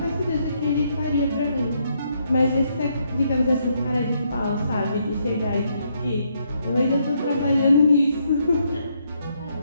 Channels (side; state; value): both; inverted; correlation -0.75